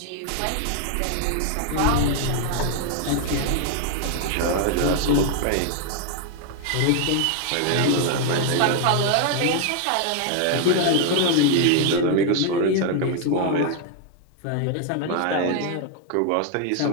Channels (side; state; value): both; different; correlation 0.00